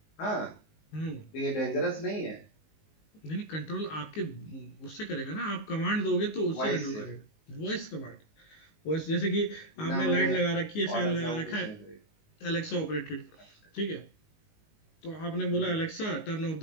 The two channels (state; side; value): late; right; 19 ms